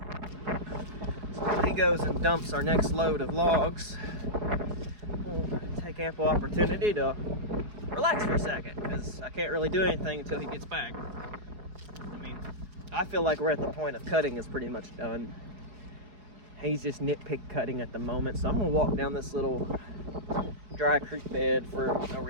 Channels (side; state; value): left; late; 4.7 ms